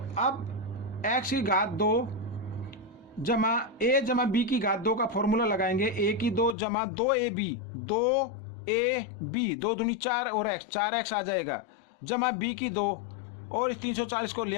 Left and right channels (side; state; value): right; drops out; at 6.6 s